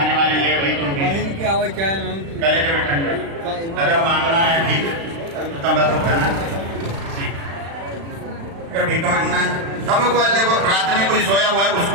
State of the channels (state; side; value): late; left; 36 ms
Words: वाले ले भाई तुम गले को ठंडक। अगर मांगना है ठीक तंबाकू खाना अगर भीख मांगना है तंबाकू वाले को रात में कोई सोया हुआ है उसको